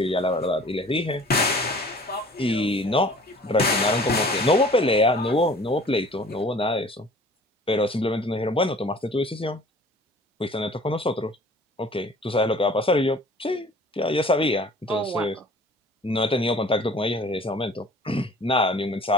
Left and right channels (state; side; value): normal; both; correlation 0.48